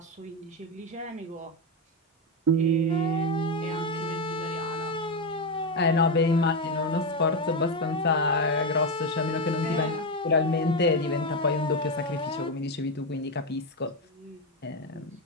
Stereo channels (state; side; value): normal; both; correlation 0.10